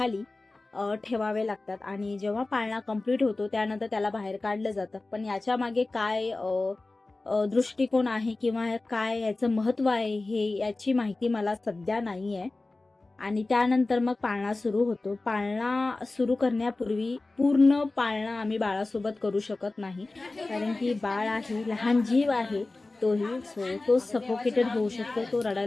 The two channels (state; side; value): quieter; right; 3.2 dB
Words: ठेवावे लागतात आणि जेव्हा पाळणा कंप्लीट होतो त्यानंतर त्याला बाहेर काढलं जातं. पण याच्या मागे काय दृष्टिकोन आहे किंवा काय याचं महत्त्व आहे हे याची माहिती मला सध्या नाही आहे. आणि त्यानंतर मग पाळणा सुरू होतो. पाळणा सुरू करण्यापूर्वी पूर्ण पाळणा आम्ही बाळासोबत करू शकत नाही, कारण की बाळ आहे, लहान जीव आहे तोही. तो सफोकेटेड होऊ शकतो, तो